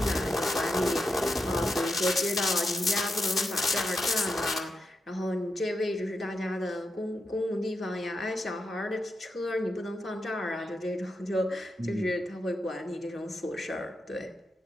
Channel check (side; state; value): both; normal; correlation 0.86